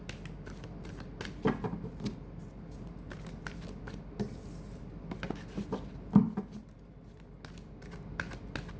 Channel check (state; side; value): identical; both; correlation 1.00